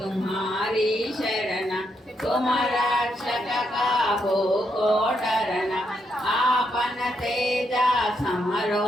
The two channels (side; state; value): both; normal; correlation 0.79